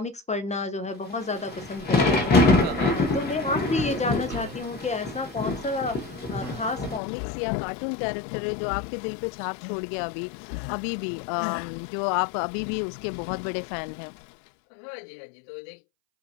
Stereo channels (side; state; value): right; drops out; at 7.0 s